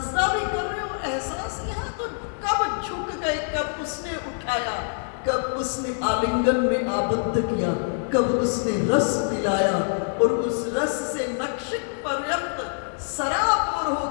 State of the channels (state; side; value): silent; right; 62 dB below the other